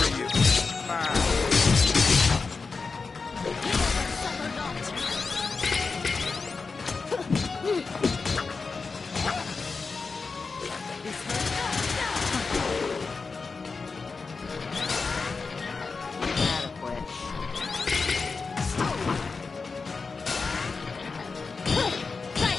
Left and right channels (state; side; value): quieter; right; 4.5 dB